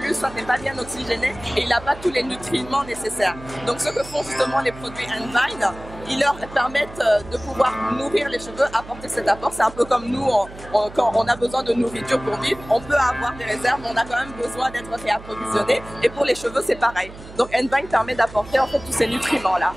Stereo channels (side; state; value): right; noise; hum, 16 dB below the sound